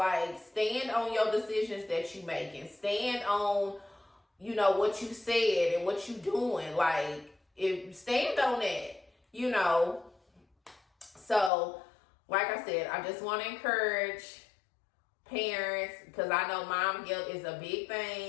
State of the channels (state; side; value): drops out; right; at 11.5 s